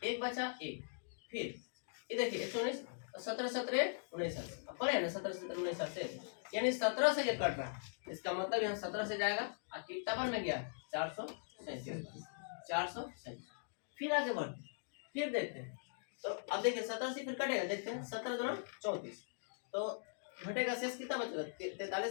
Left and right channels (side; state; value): right; silent; digital silence